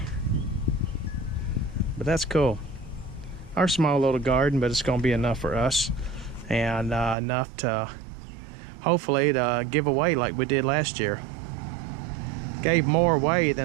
But that's cool. Our small little garden, but it's gonna be enough for us, and enough to hopefully to give away like we did last year. Gave more away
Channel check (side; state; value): left; drops out; at 7.2 s